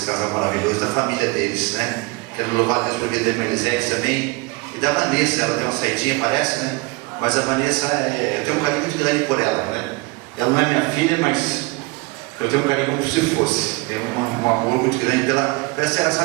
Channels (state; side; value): quieter; left; 24.8 dB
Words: casal maravilhoso, da família deles, né? Quero louvar a Deus por vida da irmã Elisete também, e da Vanessa. Ela deu uma saidinha, parece, né? Mas a Vanessa, eu tenho um carinho muito grande por ela, né? Ela não é minha filha, mas eu tenho um carinho como se fosse. É um amor muito grande pela